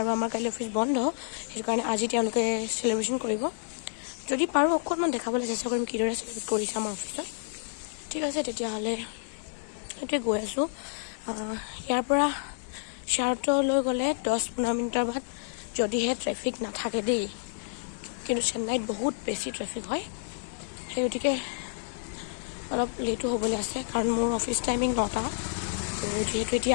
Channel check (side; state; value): right; silent; 58 dB below the other